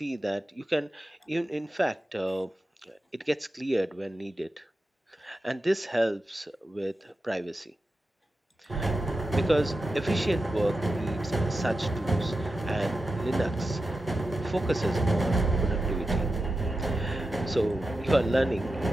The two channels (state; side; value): normal; both; correlation 0.91